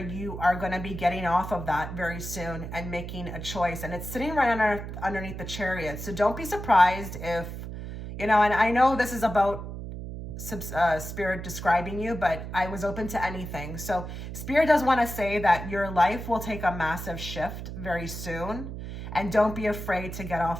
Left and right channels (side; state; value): right; noise; hum, 8 dB below the sound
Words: are going to be getting off of that very soon and making a choice. And it's sitting right underneath the Chariot. So don't be surprised if, you know, and I know this is about Spirit describing you, but I was open to anything. So Spirit does want to say that your life will take a massive shift very soon. And don't be afraid to get